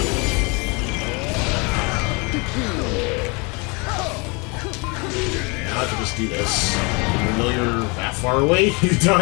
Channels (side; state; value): right; quieter; 30.0 dB